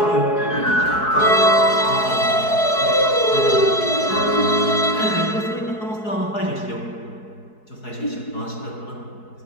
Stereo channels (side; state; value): right; late; 4.7 ms